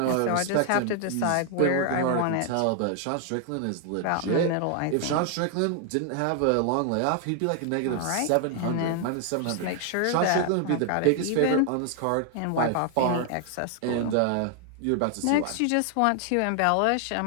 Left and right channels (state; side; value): different; both; correlation 0.00